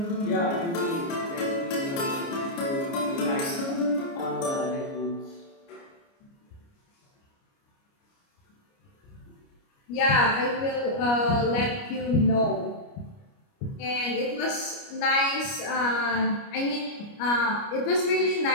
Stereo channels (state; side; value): late; right; 29 ms